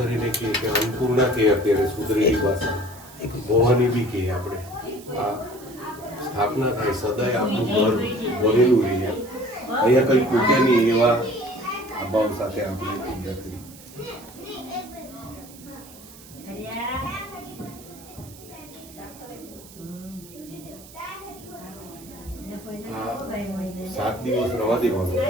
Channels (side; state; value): right; noise; hiss, 20 dB below the sound